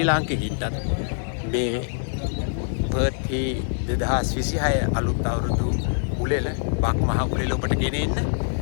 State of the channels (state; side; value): silent; right; 62 dB below the other